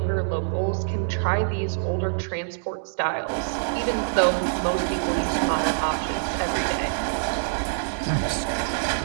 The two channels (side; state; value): left; silent; digital silence